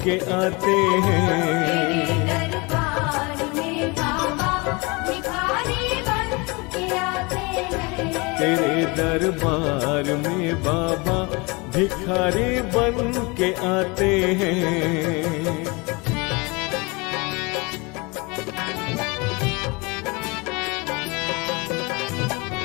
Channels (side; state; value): right; quieter; 27.4 dB